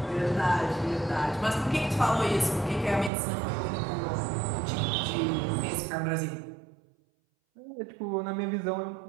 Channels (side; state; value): left; drops out; at 3.1 s